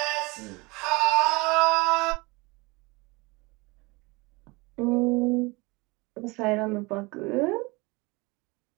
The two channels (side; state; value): left; quieter; 25.3 dB